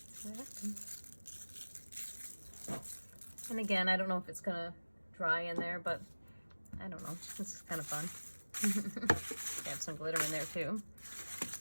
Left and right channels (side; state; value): both; inverted; correlation -1.00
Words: And again, I don't know if it's gonna dry in there, but I don't know. This is kind of fun. Have some glitter in there too.